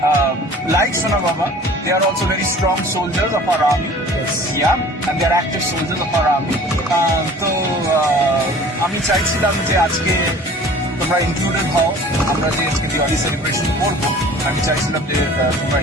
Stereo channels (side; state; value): both; normal; correlation 0.46